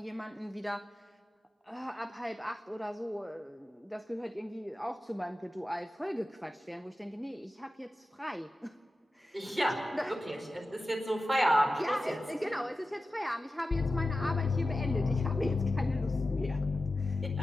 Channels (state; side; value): normal; both; correlation 0.94